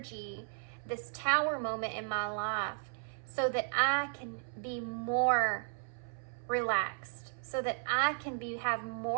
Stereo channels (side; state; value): left; silent; 54 dB below the other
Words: this tower moment in my life so that I can be more relaxed, so that I can have